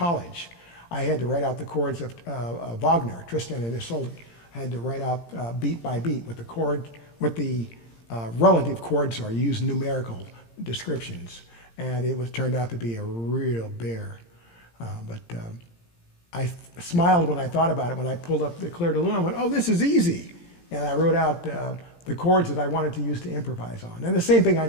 I had to write out the chords of Wagner, Tristan and Isolde. I had to write out beat by beat what the relative chords are. Use numerical descriptions, and it turned out to be a real bear. But I smiled when I thought about it. When I pulled up the Clair de Lune, I went, "Oh, this is easy," and I wrote out the chords that I wanted to use to improvise on. And the same thing I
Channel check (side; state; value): right; late; 17 ms